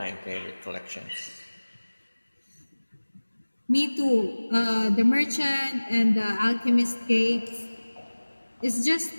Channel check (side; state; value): both; inverted; correlation -1.00